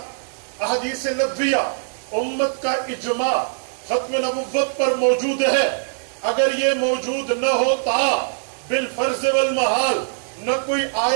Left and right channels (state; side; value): silent; left; digital silence